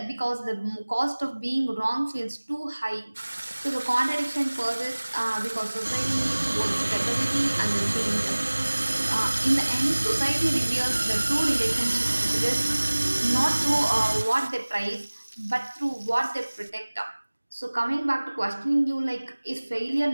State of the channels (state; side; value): inverted; both; correlation -1.00